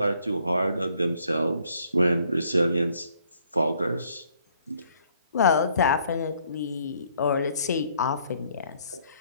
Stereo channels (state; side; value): inverted; both; correlation -0.66